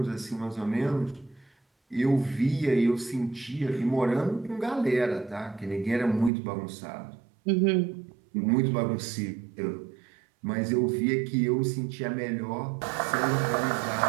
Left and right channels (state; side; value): drops out; left; at 6.3 s